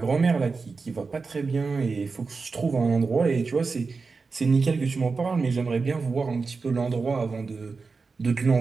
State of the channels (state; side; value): quieter; left; 4.5 dB